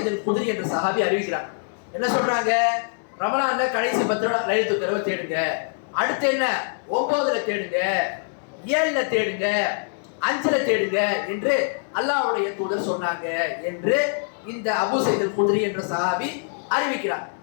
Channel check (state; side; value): silent; right; 63 dB below the other